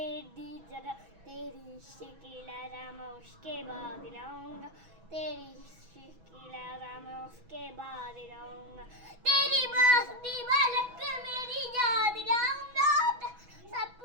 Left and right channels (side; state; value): left; late; 6.1 ms